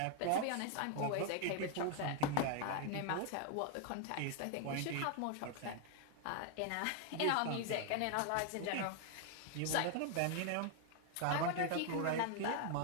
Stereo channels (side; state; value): both; different; correlation 0.00